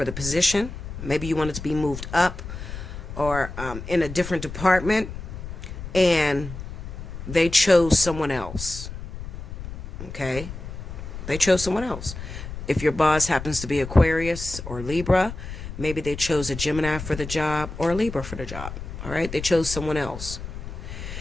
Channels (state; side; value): noise; left; rumble, 9 dB below the sound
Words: the position. Maybe you wanted to be moved up or in a different department, and they chose someone else. Okay? They chose someone else. If your boss happens to be Aquarius or Libra, maybe they chose a Gemini for the job or a Libra for the job. All right? They chose someone else.